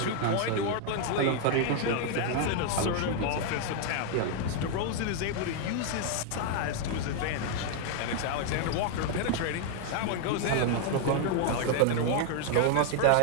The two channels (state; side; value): different; both; correlation 0.00